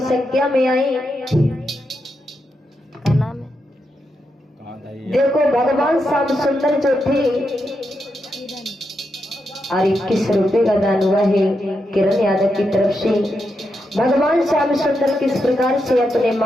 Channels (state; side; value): normal; both; correlation 0.84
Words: संख्या में आई। देखो भगवान श्याम सुंदर जो थे और 21 रुपए का दान हुआ है किरण यादव की तरफ से। भगवान श्याम सुंदर किस प्रकार से अपने